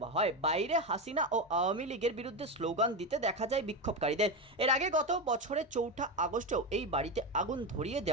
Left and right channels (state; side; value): normal; both; correlation 0.14